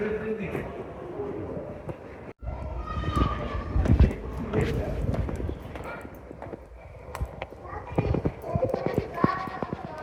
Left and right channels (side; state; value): both; identical; correlation 1.00